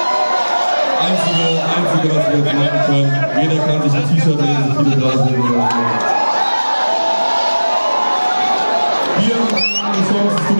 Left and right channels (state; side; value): inverted; both; correlation -1.00